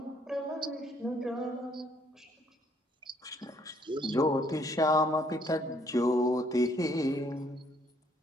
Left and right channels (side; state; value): both; normal; correlation 0.66